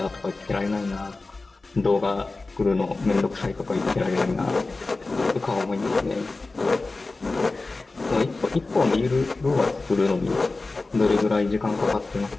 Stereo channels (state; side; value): quieter; right; 3.5 dB